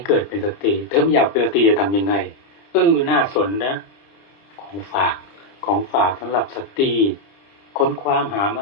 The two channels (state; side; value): late; right; 30 ms